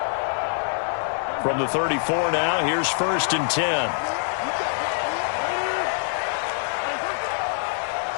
From the 34 now, here's 1st and 10.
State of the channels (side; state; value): right; silent; digital silence